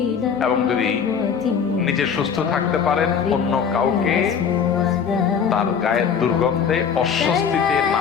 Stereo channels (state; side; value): quieter; right; 6.9 dB